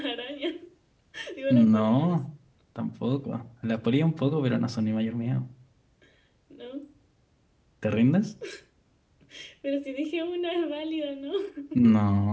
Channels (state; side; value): identical; both; correlation 1.00